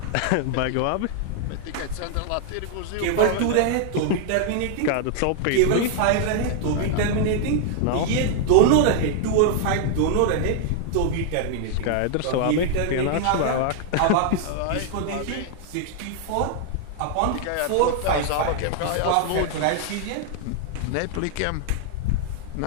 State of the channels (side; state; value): both; different; correlation 0.00